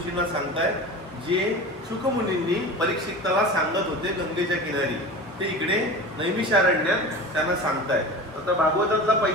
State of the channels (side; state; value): both; normal; correlation 0.33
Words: सांगतायत, जे शुकमुनींनी परीक्षिताला सांगत होते गंगेच्या किनारी, ते इकडे नैमिषारण्यात त्यांना सांगतायत. आता भागवतातला